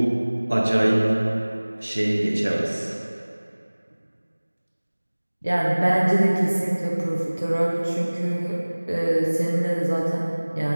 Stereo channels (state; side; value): inverted; both; correlation -1.00